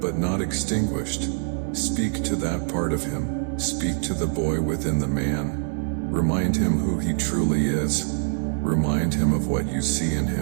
not extinguished. Speak to that part of him. Speak to the boy within the man. Remind him who he truly is. Remind him of what you see in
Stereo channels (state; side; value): silent; left; digital silence